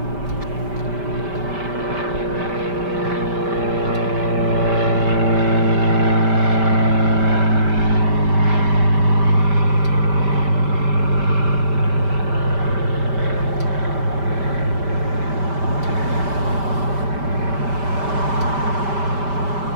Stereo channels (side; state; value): left; late; 5.1 ms